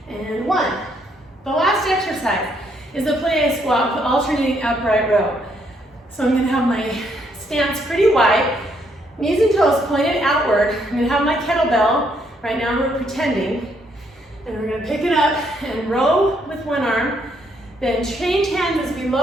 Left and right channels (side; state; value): both; normal; correlation 0.72